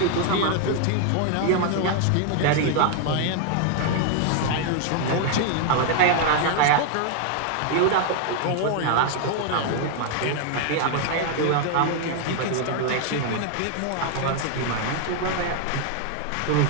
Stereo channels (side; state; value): both; different; correlation 0.00